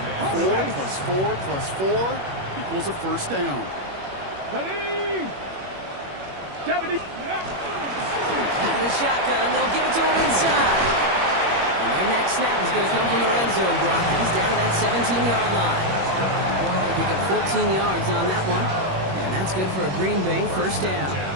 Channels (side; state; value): left; late; 21 ms